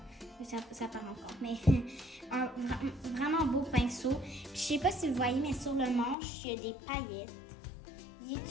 Ça part encore. Mais vraiment beau pinceau. Puis, je sais pas si vous voyez, mais sur le manche, il y a des paillettes. Il est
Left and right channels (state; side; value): drops out; right; at 6.2 s